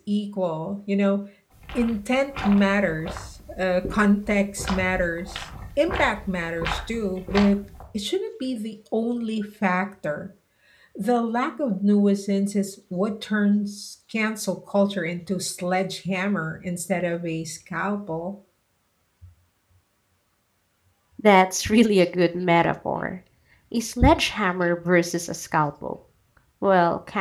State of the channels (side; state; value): both; identical; correlation 1.00